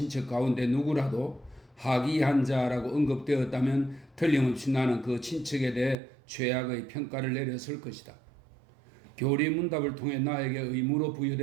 가운데 누구라도 하기한자라고 언급되었다면 틀림없이 나는 그 친척에 대해 최악의 평가를 내렸을 것이다. 교리문답을 통해 나에게 의무로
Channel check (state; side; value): drops out; left; at 6.0 s